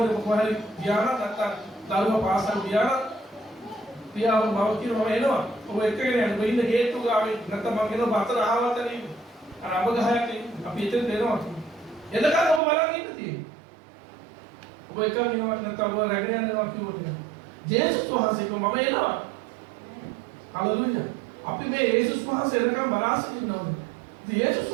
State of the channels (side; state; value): left; drops out; at 12.6 s